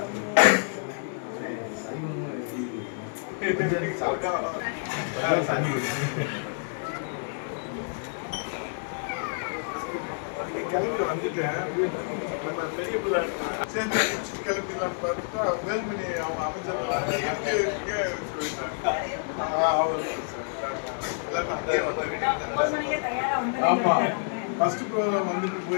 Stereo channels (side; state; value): right; silent; digital silence